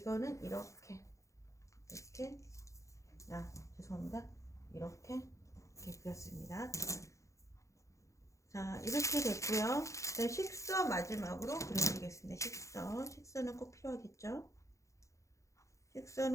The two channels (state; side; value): late; right; 0.15 ms